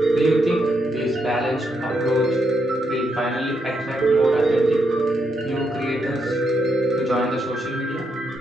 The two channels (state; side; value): normal; both; correlation 0.80